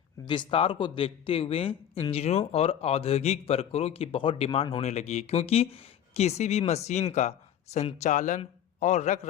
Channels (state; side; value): quieter; right; 9.9 dB